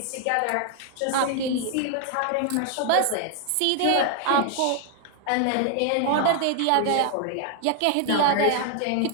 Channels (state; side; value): different; both; correlation 0.00